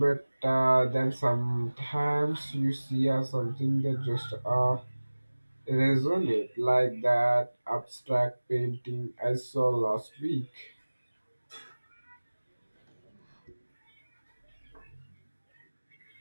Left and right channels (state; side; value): inverted; both; correlation -1.00